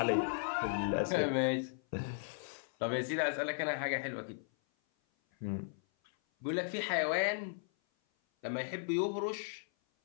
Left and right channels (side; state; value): right; silent; 54 dB below the other